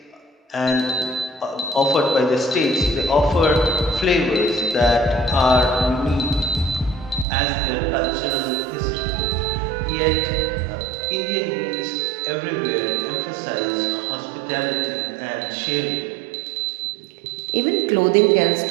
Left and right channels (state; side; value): drops out; left; at 7.2 s